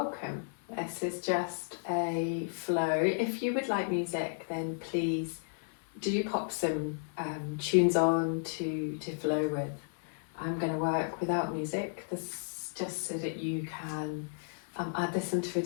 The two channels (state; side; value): silent; right; 56 dB below the other